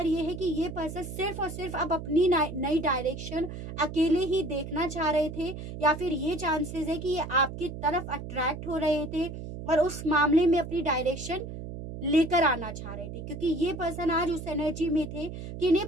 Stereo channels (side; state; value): right; noise; hum, 9 dB below the sound